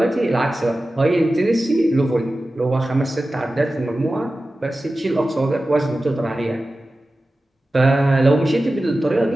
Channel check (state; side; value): normal; both; correlation 0.95